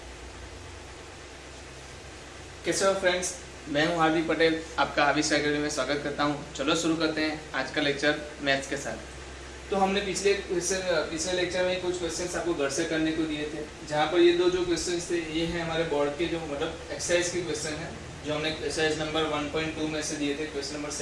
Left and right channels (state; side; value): identical; both; correlation 1.00